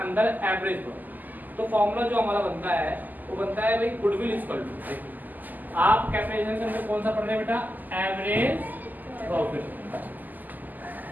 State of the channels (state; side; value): late; left; 0.084 ms